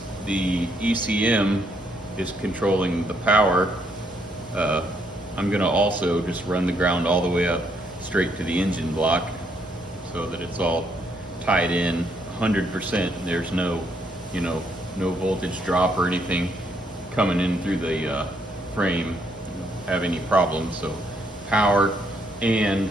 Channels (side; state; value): both; normal; correlation 0.73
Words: the ECM is controlling the power, I'm going to also just run the ground all the way up straight to the engine block so that it's all tied in 100%. There's no, no voltage drop or anything coming in through the frame have any problems. So power and